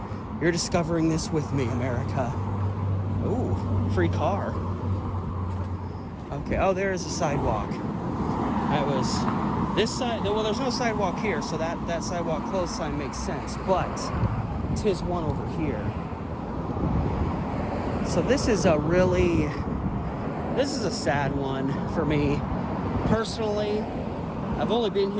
You're discovering this with me, America. Ooh, free car. Okay, oh, there is a sidewalk. That was this side. Well, there's no sidewalk here, so that sidewalk closed sign makes sense, but 'tis one over here. So this is a sad one for me. Personally, I've only been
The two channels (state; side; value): identical; both; correlation 1.00